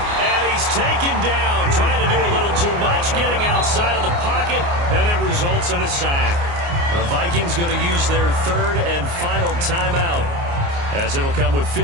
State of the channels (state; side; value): late; left; 29 ms